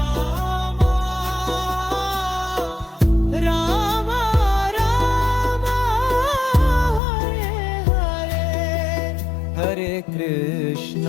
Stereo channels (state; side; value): drops out; right; at 7.0 s